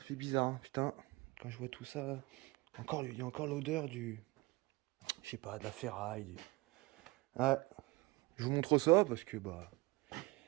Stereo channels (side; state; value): left; quieter; 23.3 dB